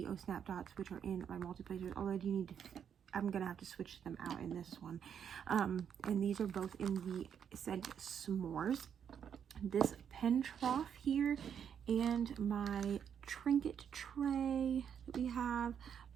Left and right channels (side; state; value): left; quieter; 8.1 dB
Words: Snap Dots, which are in my multi placers. Although I'm gonna have to switch them out in this one. And these are both in the scent S'mores. This pen trough here, and my trinket tray that we have,